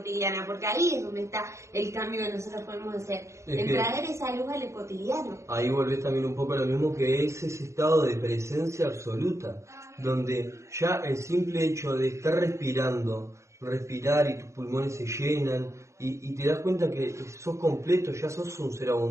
porque ahí es donde está el cambio que nosotros podemos hacer, en traer esa luz al cotidiano. Ahí volvés también un poco a lo mismo, que es ese estado de presencia absoluta, donde ya el simple hecho de estar respirar y tus pulmones se llenan y te das cuenta que sos completo, ya sos un ser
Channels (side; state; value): left; late; 0.14 ms